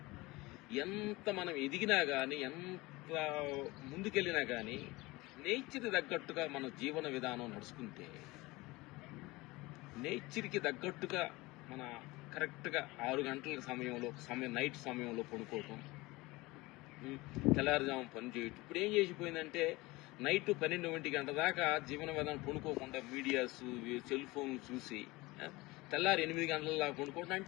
ఎంత మనం ఎదిగినా కానీ, ఎంత ముందుకెళ్ళినా కానీ నేచర్కి తగ్గట్టుగా మన జీవన విధానం నడుచుకుంటే, నేచర్కి తగ్గట్టుగా మన కరెక్ట్గా 6 గంటల నైట్ సమయంలో పడుకోవటం, తెల్లారుజాము పని చేయటం. ఇప్పుడు ఏం చేసిపోయిందంటే నైట్ 12 గంట దాకా జీవన విధానం పడుకోకుండా మీడియాస్, సెల్ ఫోన్లు చూసి తెల్లారి 8 గంటల పడుకోవడం.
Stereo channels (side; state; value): right; quieter; 21.7 dB